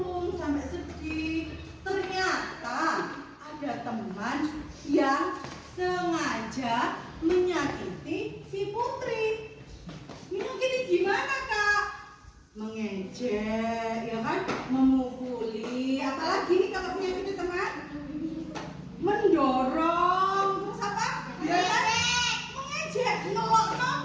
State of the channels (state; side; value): identical; both; correlation 1.00